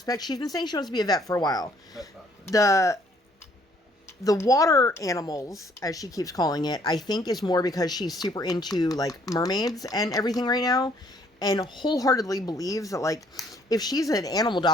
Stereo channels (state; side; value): normal; both; correlation 0.63